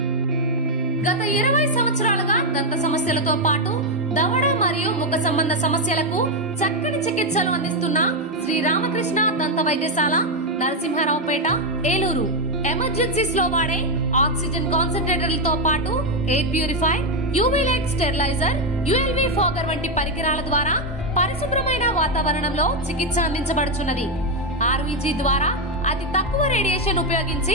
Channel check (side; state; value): both; normal; correlation 0.05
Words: గత 20 సంవత్సరాలుగా దంత సమస్యలతో పాటు దవడ మరియు ముఖ సంబంధ సమస్యలకు చక్కని చికిత్సలు అందిస్తున్న శ్రీ రామకృష్ణ దంత వైద్యశాల, నరసింహారావుపేట, ఏలూరు. ఎమర్జెన్సీస్ లో వాడే ఆక్సిజన్ కాన్సంట్రేటర్లతో పాటు air purify, UV light steriliser, ULV fogger వంటి పరికరాల ద్వారా పరిశుభ్రమైన వాతావరణంలో చికిత్స అందించబడుచున్నది. ఆర్వీజీ ద్వారా అతి తక్కువ రేడియేషన్ ఉపయోగించి